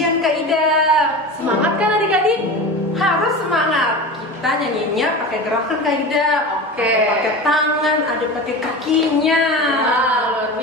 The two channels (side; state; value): both; normal; correlation 0.29